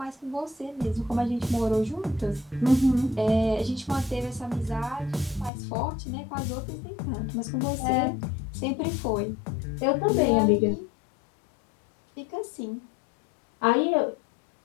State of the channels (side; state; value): right; drops out; at 5.5 s